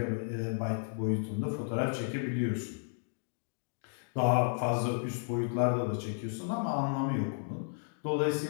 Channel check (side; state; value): right; silent; digital silence